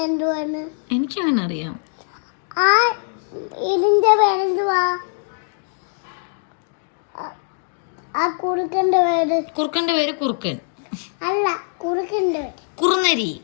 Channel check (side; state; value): right; silent; digital silence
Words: എന്തുവാണ്? എനിക്കങ്ങനെ അറിയാം. ഇതിന്റെ പേരെന്തുവാ? ആ കുറുക്കന്റെ പേര് കുറുക്കന്റെ പേര് കുറുക്കൻ. അല്ല, കുറുക്കന്റെ പേര് കുറുനരി.